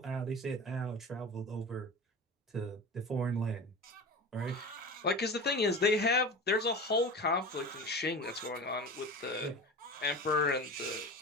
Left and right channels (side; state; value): both; normal; correlation 0.31